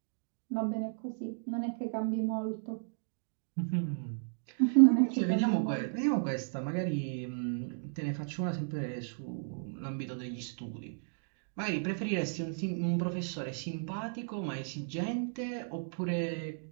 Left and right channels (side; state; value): left; silent; digital silence